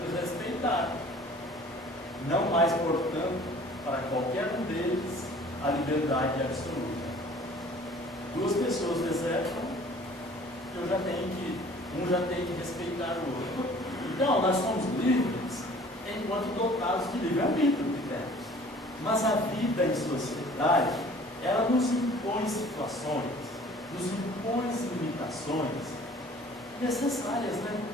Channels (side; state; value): both; normal; correlation 0.50